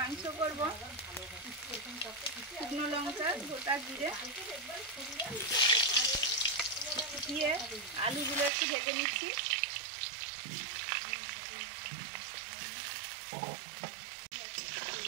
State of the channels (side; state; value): left; drops out; at 8.5 s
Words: করবো, শুকনো লঙ্কা, গোটা জিরে দিয়ে আলুগুলো একটু ভেজে নিচ্ছি।